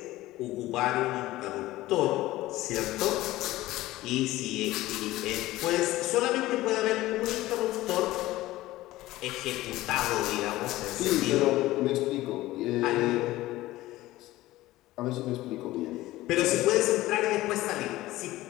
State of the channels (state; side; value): quieter; right; 17.1 dB